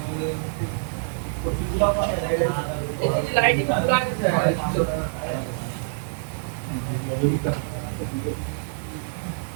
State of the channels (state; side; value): silent; left; 61 dB below the other